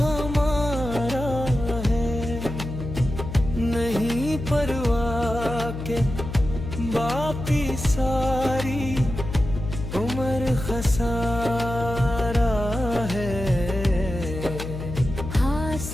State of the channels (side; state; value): left; noise; hum, 7 dB below the sound